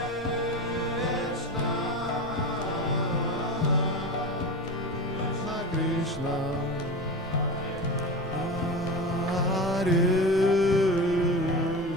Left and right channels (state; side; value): normal; both; correlation 0.26